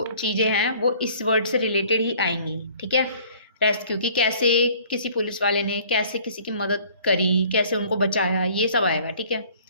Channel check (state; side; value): inverted; both; correlation -0.53